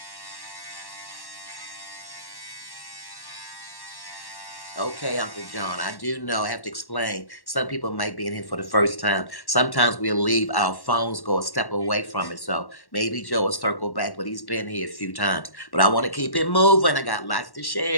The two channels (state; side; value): late; right; 1.1 ms